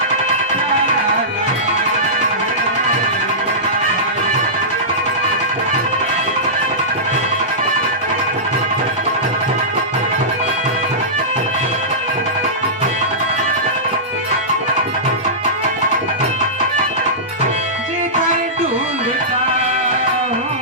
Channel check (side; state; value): both; normal; correlation -0.17